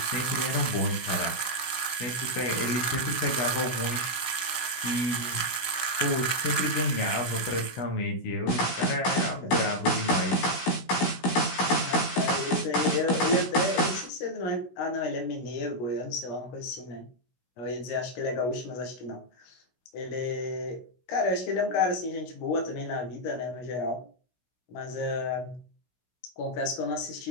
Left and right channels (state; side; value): late; right; 16 ms